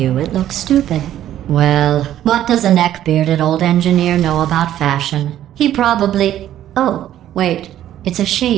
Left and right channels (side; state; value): left; quieter; 12.0 dB